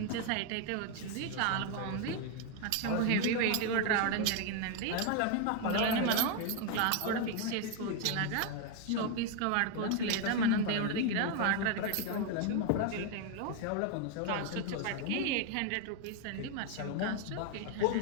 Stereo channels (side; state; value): both; different; correlation 0.01